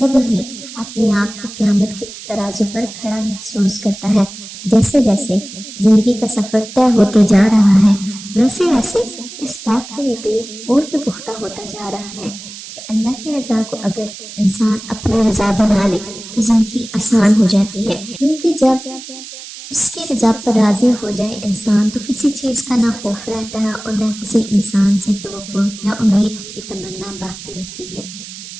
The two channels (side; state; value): right; noise; hiss, 13 dB below the sound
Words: ہی اپنے آپ کو قیامت کے ترازو پر کھڑا محسوس کرتا ہے۔ جیسے جیسے زندگی کا سفر طے ہوتے جا رہا ہے ویسے ویسے اس بات کا یقین اور بھی پختہ ہوتا جا رہا ہے کہ اللہ کی رضا کو اگر انسان اپنی رضا بنا لے تو زندگی آسان ہو جاتی ہے، کیونکہ جب اس کی رضا پر راضی ہو جائے انسان تو کسی چیز کا نہ خوف رہتا ہے اور نہ کسی انسان سے توقع یا امید کی تمنا باقی رہتی ہے۔